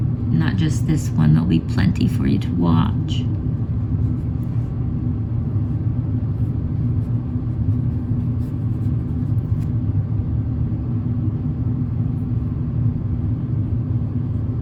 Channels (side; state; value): both; identical; correlation 1.00